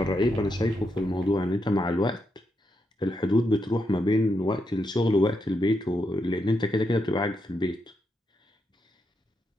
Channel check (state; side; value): normal; both; correlation 0.82